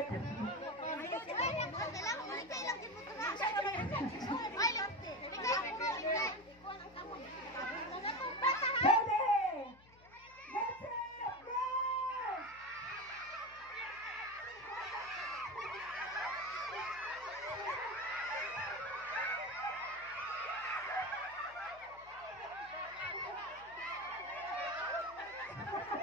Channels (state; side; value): noise; left; hum, 25 dB below the sound